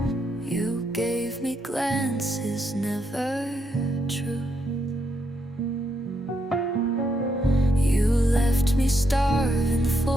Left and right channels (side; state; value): both; normal; correlation 0.79